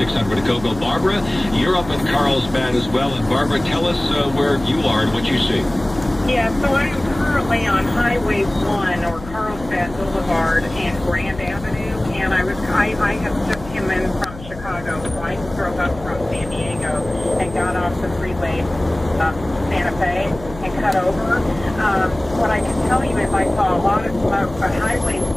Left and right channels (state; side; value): noise; left; hum, 15 dB below the sound